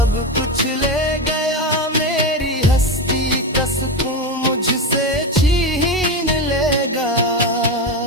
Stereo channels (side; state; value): both; normal; correlation 0.16